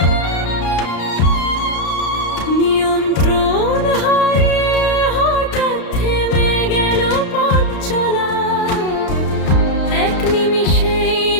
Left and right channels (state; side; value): late; right; 33 ms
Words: নিয়ন্ত্রণ হারিয়ে হঠাৎ থেমে গেল পথ চলা। এক নিমিষেই